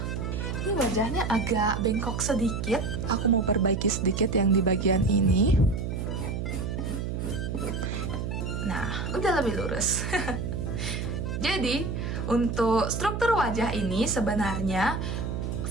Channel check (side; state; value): right; noise; hum, 3 dB below the sound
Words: ini wajahnya agak bengkok sedikit. Aku mau perbaiki sedikit yang di bagian ini. Nah, udah lebih lurus. Jadi, untuk struktur wajah ini sebenarnya